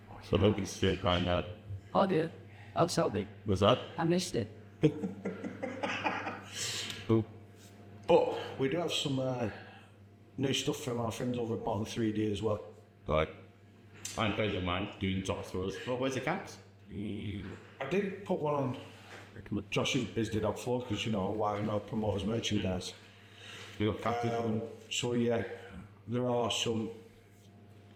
So don't be straight crying out. Oh dear, I'll tell me. What's that? I missed it. Who? But we do have some new stuff from our friends over at Bottom 3D as well. Right. I'm friends of mine doing top throws. Well, where's the cats? I did put one on Josh's Biz Did Dog Floor because, you know, why not promote his merchandise. We got cats. So yeah, there are some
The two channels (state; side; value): identical; both; correlation 1.00